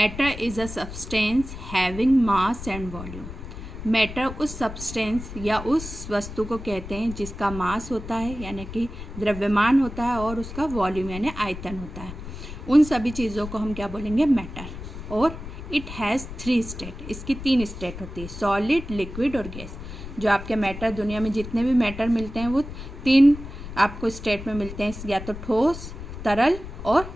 is a substance having mass and volume. Matter उस सब्सटेंस या उस वस्तु को कहते हैं जिसका मास होता है यानी कि द्रव्यमान होता है और उसका वॉल्यूम यानी आयतन होता है। उन सभी चीज़ों को हम क्या बोलेंगे, मैटर। और इट हैज़ 3 स्टेट, इसकी 3 स्टेट होती है, सॉलिड, लिक्विड और गैस। जो आपके मैटर, दुनिया में जितने भी मैटर मिलते हैं वो 3 आपको स्टेट में मिलते हैं, या तो ठोस, तरल और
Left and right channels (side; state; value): left; noise; rumble, 11 dB below the sound